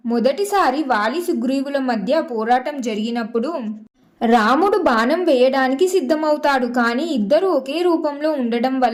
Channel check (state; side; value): identical; both; correlation 1.00